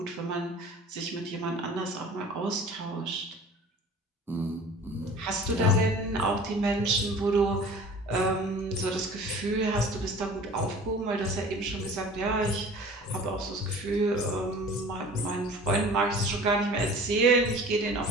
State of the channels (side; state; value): both; normal; correlation 0.44